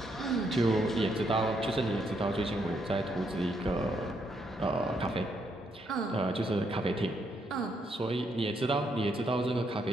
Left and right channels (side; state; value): both; normal; correlation 0.75